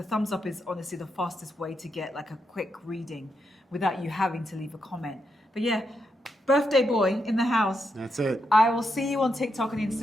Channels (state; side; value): normal; both; correlation 0.83